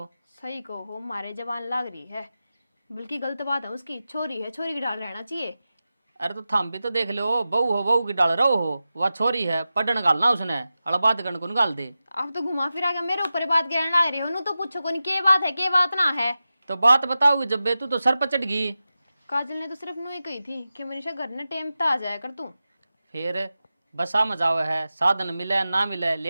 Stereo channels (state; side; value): inverted; both; correlation -0.93